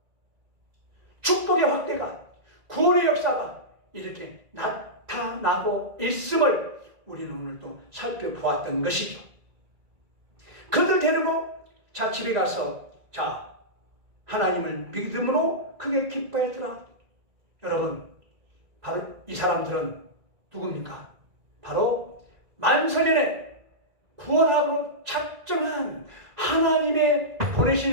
축복의 확대가, 구원의 역사가 이렇게 나타나고 있음을 우리는 오늘 또 살펴보았던 것이죠. 그들 데리고 자 집에 가서 자 하나님을 믿음으로 크게 기뻐했더라. 여러분, 바로 이 사람들은 누굽니까? 바로 만세년에 구원하고 작정한 하나님의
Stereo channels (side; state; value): left; late; 1.9 ms